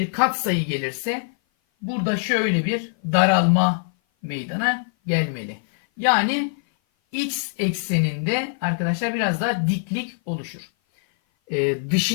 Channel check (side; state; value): right; silent; 57 dB below the other